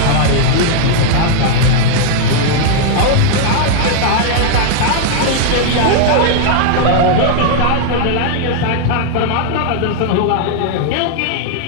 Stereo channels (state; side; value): different; both; correlation 0.00